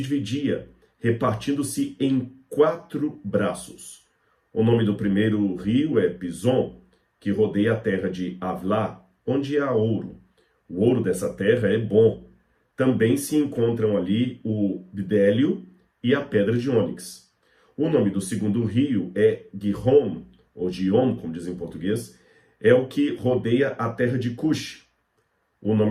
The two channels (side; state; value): both; identical; correlation 1.00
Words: dividia, repartindo-se em 4 braços. O nome do primeiro rio é Pison, que rodeia a terra de Havilá, onde há ouro. O ouro dessa terra é bom. Também se encontram ali o bidélio e a pedra de ônix. O nome do segundo rio é Gihon, ou Gion, como dizem em português, é o que rodeia a terra de Cush. O